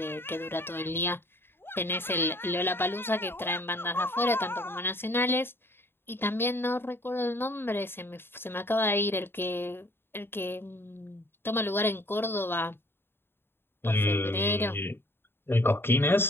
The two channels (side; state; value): right; late; 0.11 ms